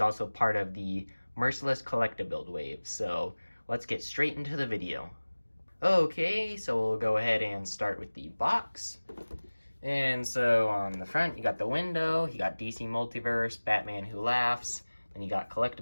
part of the Merciless Collectabuild wave, so let's get straight into the video. Okay, so we'll go ahead and start with the box. And so on the front, you got the window, you got DC Multiverse, Batman Who Laughs, then you got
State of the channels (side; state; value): both; inverted; correlation -1.00